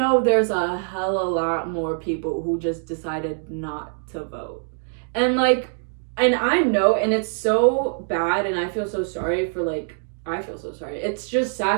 there's a hell of a lot more people who just decided not to vote. And I know, and it's so bad, and I feel so sorry It's just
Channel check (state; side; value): silent; left; digital silence